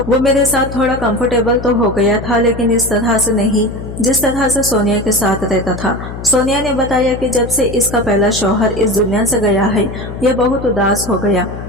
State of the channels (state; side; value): noise; left; hum, 9 dB below the sound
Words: मेरे साथ थोड़ा कंफर्टेबल तो हो गया था, लेकिन इस तरह से नहीं जिस तरह से सोनिया के साथ रहता था। सोनिया ने बताया कि जब से इसका पहला शौहर इस दुनिया से गया है, ये बहुत उदास हो गया